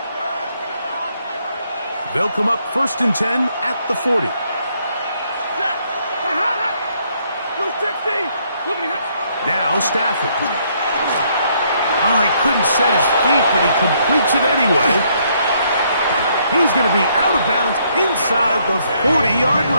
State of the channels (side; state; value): both; inverted; correlation -0.70